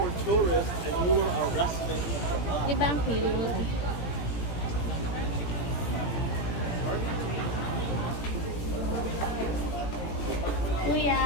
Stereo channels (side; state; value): right; late; 17 ms